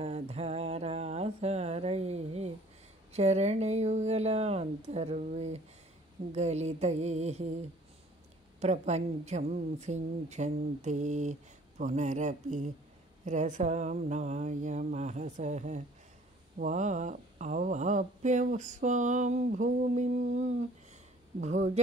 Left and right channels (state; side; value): normal; both; correlation 0.54